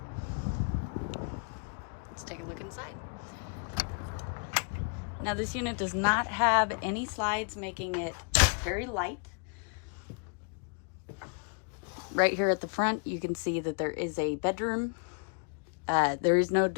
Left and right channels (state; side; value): quieter; right; 39.0 dB